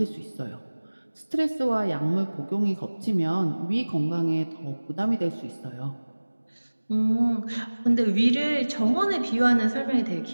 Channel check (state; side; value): inverted; both; correlation -1.00